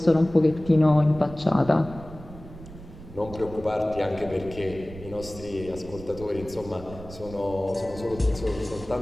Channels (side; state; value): right; noise; rumble, 15 dB below the sound